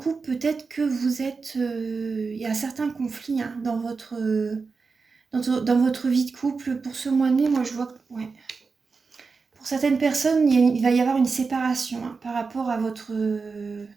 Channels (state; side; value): quieter; left; 4.7 dB